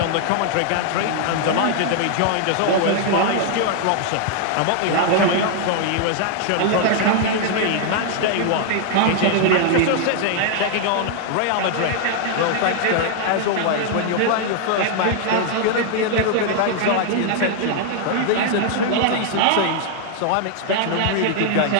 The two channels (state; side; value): different; both; correlation 0.00